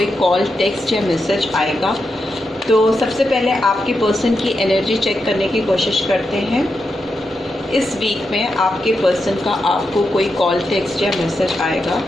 कॉल, टेक्स्ट या मैसेज आएगा। तो सबसे पहले आपके पर्सन की एनर्जी चेक करने की कोशिश करते हैं। इस वीक में आपके पर्सन का आपको कोई कॉल, टेक्स्ट या मैसेज आएगा।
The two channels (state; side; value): normal; both; correlation 0.86